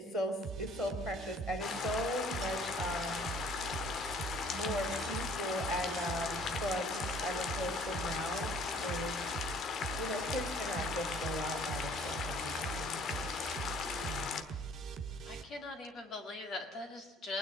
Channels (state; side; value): normal; both; correlation 0.55